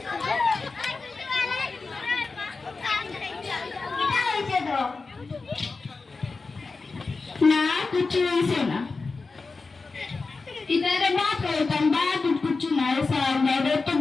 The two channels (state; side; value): quieter; right; 4.1 dB